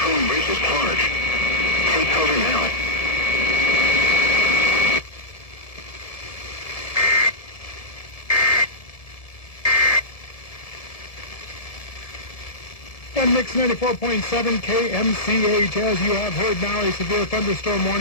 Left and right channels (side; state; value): right; late; 1.7 ms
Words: Bridges Park. Take cover now. And Mix 94.7 KMCH, as you have heard now, a severe thunderstorm